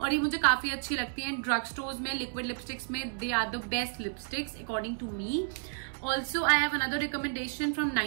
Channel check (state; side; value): silent; left; 57 dB below the other